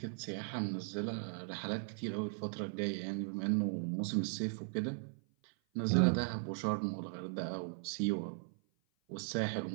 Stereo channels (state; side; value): silent; left; 52 dB below the other